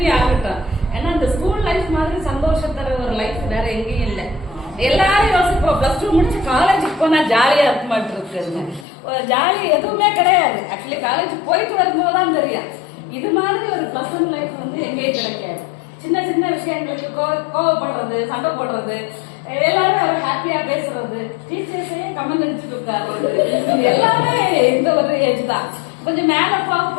ஆகட்டும். ஏன்னா இந்த ஸ்கூல் லைஃப் மாதிரி சந்தோஷம் தர ஒரு லைஃப் வேற எங்கேயும் இல்லை. எல்லாரும் யோசிப்போம் பிளஸ் டூ முடிச்சு காலேஜுக்கு போனா ஜாலியா இருக்க மாட்டிருக்கு. ஜாலி எதுவுமே கிடையாது. ஆக்சுவலி காலேஜ் போயிட்டு வரும்போது தான் தெரியும் இது மாதிரி ஒரு பிளசன்ட் லைஃப் வந்து எங்கேயும் கிடைக்காது. சின்ன சின்ன விஷயங்களுக்கு கோவப்படுறது, சண்டை போடுறது, எல்லாரும் அவர் ஹாப்பியா பேசுறது, டீச்சர்ஸையே கமெண்ட் அடிச்சுட்டு உட்காருறது, எல்லாமே இந்த ஒரு ஏஜ் தான். கொஞ்சம் மேல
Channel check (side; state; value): right; drops out; at 8.8 s